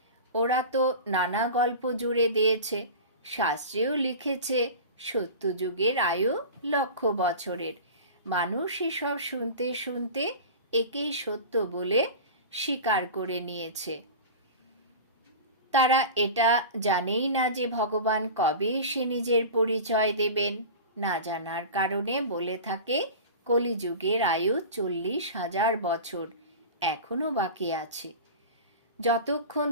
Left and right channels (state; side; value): inverted; both; correlation -0.32